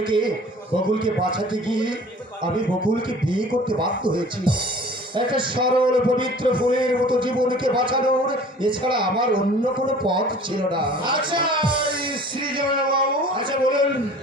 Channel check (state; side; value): normal; both; correlation 0.47